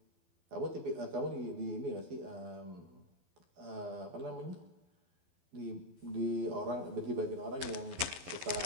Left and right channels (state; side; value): late; left; 12 ms